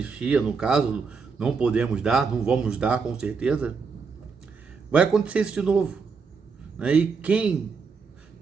no caso, não podemos dar, não vamos dar com certeza, vai acontecer isso de novo. E quem,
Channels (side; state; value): left; quieter; 5.2 dB